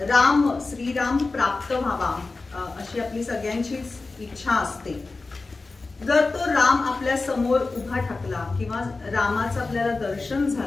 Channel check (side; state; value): right; quieter; 3.7 dB